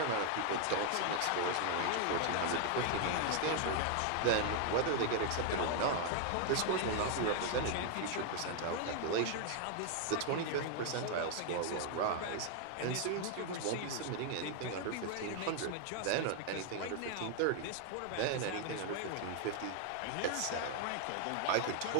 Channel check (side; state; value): both; different; correlation 0.00